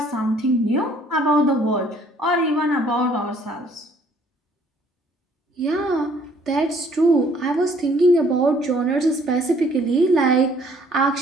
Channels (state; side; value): normal; both; correlation 0.60